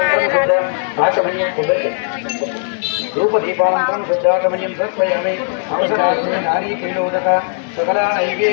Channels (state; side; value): silent; right; 68 dB below the other